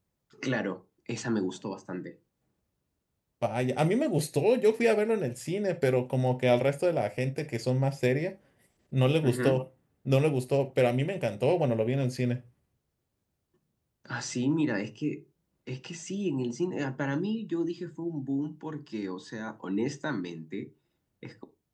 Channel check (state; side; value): identical; both; correlation 1.00